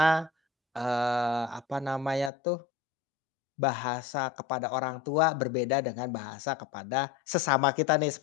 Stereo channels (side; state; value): right; drops out; at 2.3 s